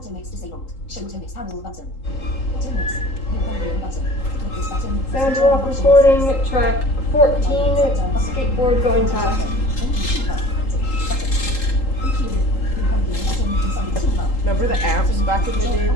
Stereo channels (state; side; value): late; right; 3.8 ms